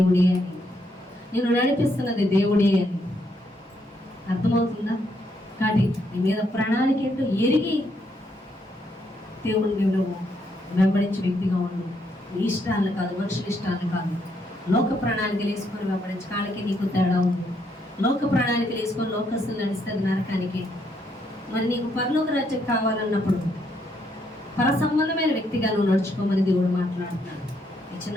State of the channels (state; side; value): normal; both; correlation 0.75